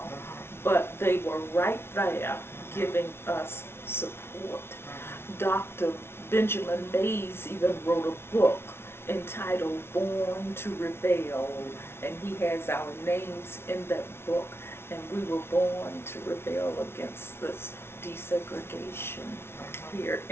but they were right there giving us support. Dr. Benjamin Mays even wrote a book entitled Born to Rebel, and he has our names in that book, and we were born to rebel against this desegregation here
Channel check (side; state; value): right; late; 0.12 ms